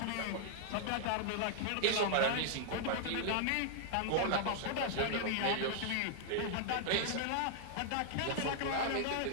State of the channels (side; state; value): both; different; correlation -0.01